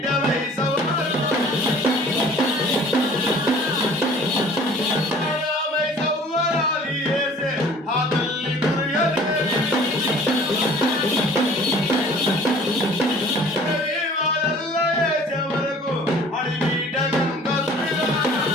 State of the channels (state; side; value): normal; both; correlation 0.50